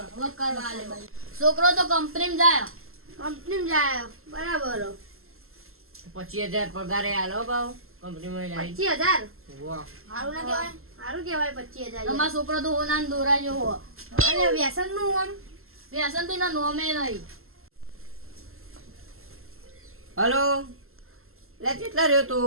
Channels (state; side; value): late; left; 0.62 ms